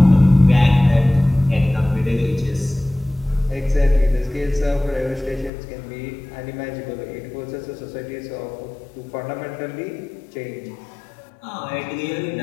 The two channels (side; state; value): right; drops out; at 5.5 s